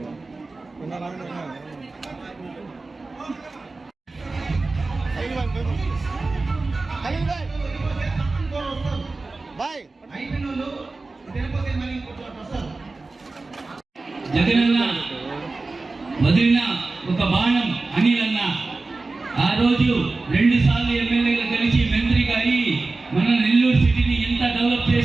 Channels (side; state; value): left; quieter; 3.5 dB